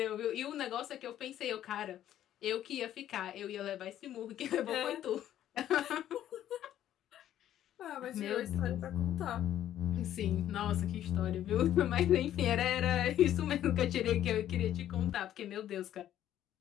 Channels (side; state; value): right; quieter; 11.7 dB